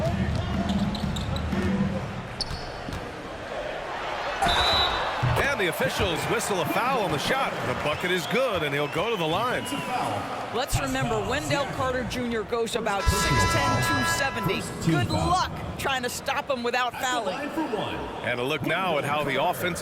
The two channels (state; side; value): identical; both; correlation 1.00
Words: The officials whistle a foul on the shot. The bucket is good, and he'll go to the line. Let's remember, Wendell Carter Jr. goes about 6'10", 270. Good luck trying to stop him without fouling. And a look now at how the